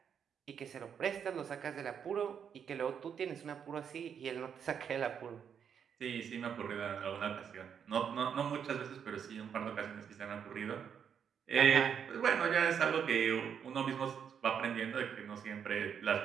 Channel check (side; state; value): left; quieter; 7.7 dB